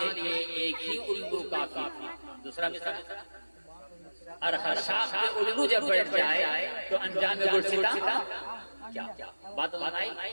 لیے ایک ہی الو کافی، دوسرا مثال، ہر شاخ پہ الگو جب بیٹھ جائے تو انجام میں گلستہ کیا بات بنائی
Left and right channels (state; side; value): inverted; both; correlation -1.00